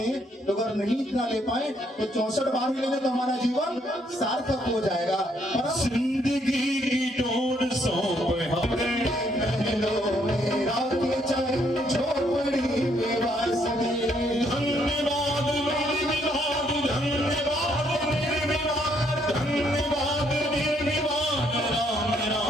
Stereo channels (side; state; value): both; normal; correlation 0.70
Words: तो अगर नहीं इतना ले पाए तो 64 बार ही लेने तो हमारा जीवन सार्थक हो जाएगा। पर जिंदगी की डोर सौंप हमें महलों में राखें चाहे झोपड़ी में वासनी। धन्यवाद निर्विवाद, धन्यवाद निर्विवाद, धन्यवाद निर्विवाद, राम